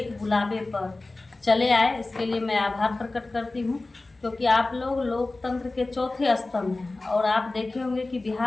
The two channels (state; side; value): quieter; right; 3.2 dB